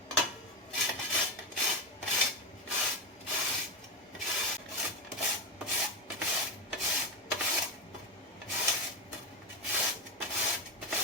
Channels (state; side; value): normal; both; correlation 0.12